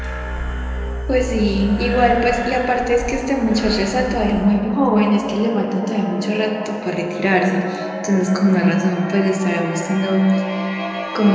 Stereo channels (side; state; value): both; identical; correlation 1.00